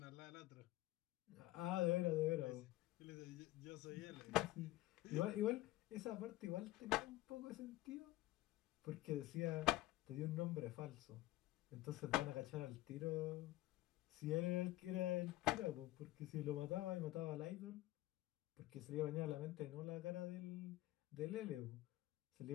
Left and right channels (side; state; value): right; quieter; 17.2 dB